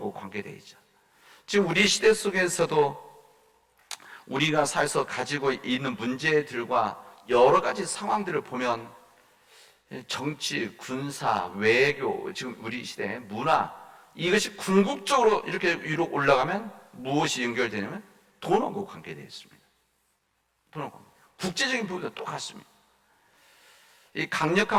관계되어 있죠. 지금 우리 시대 속에서도 우리가 살아서 가지고 있는 문제들과 여러 가지 상황들을 보면 정치, 군사, 외교, 지금 우리 시대 문화, 이것이 궁극적으로 이렇게 위로 올라가면 무엇이 연결되냐면 돈하고 관계되어 있습니다. 돈하고 국제적인 부분도 똑같습니다. 이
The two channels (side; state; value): both; identical; correlation 1.00